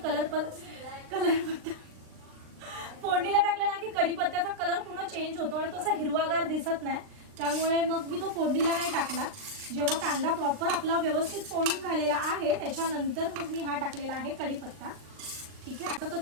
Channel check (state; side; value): late; left; 39 ms